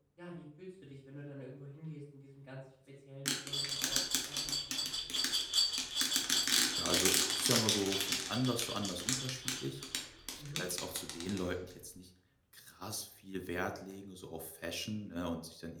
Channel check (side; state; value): both; identical; correlation 1.00